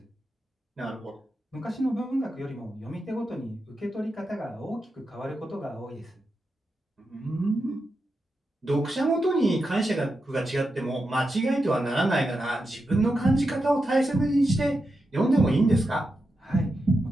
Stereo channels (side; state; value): both; normal; correlation 0.88